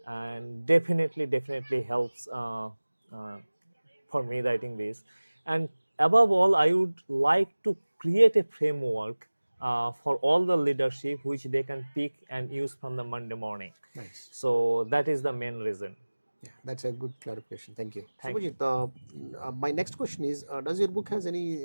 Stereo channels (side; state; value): both; inverted; correlation -1.00